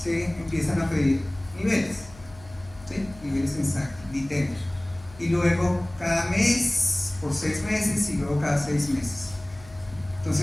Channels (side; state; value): left; noise; hum, 20 dB below the sound